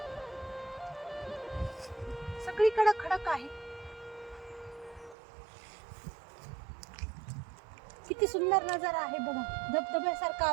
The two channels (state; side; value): drops out; left; at 5.2 s